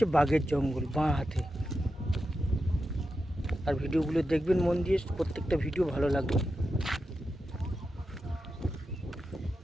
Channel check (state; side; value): normal; both; correlation 0.89